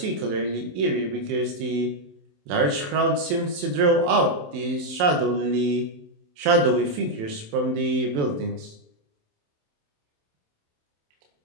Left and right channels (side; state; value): left; late; 27 ms